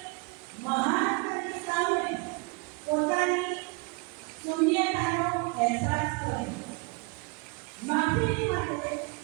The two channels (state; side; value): quieter; left; 29.7 dB